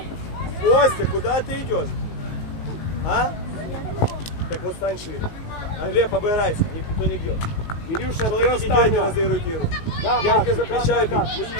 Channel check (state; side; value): late; right; 19 ms